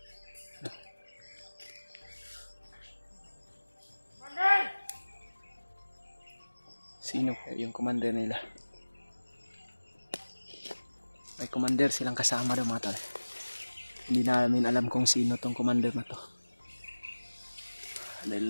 Sino yung commander nila? May commander silang kasama daw, mga tol. Hindi namin alam kung sino tong commander na to.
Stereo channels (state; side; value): inverted; both; correlation -1.00